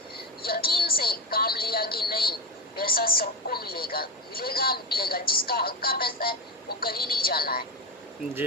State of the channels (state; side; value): normal; both; correlation 0.18